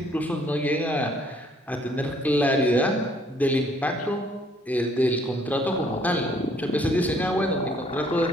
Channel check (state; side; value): normal; both; correlation 0.63